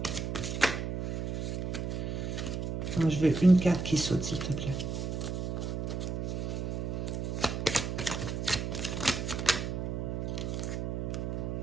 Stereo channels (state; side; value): noise; right; hum, 2 dB below the sound